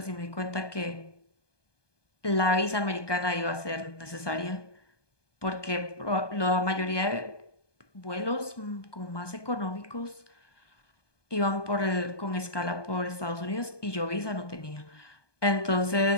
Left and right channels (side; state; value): right; late; 1.2 ms